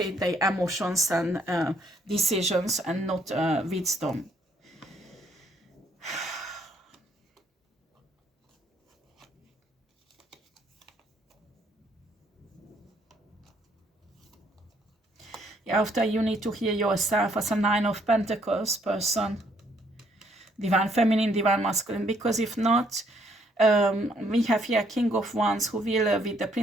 their emotions and decisions and not wisdom. Yeah, after you need to hear yourself as a 9 of Pentacles person. Divine Feminine, Divine Masculine. Because if not, we have here King of Wands who will, with the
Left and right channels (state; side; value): normal; both; correlation 0.68